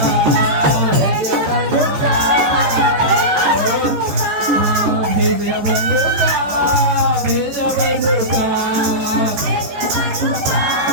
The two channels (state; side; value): late; left; 14 ms